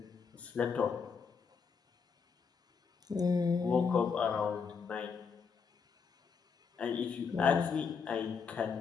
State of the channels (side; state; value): right; quieter; 5.8 dB